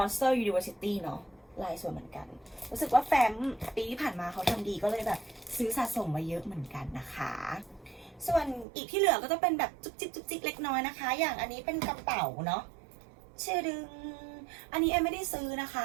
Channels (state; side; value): drops out; left; at 8.7 s